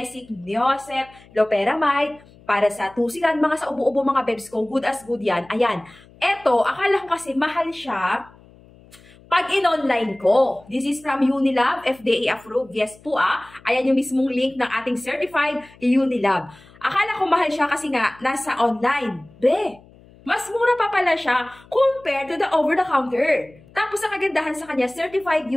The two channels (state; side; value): noise; left; hum, 25 dB below the sound